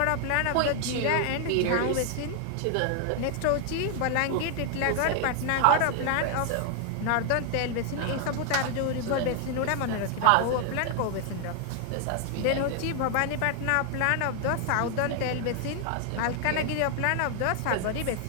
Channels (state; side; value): different; both; correlation 0.00